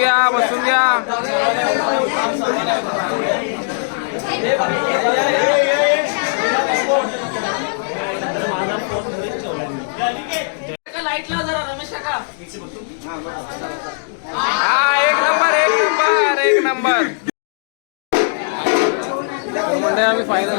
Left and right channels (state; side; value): silent; right; 67 dB below the other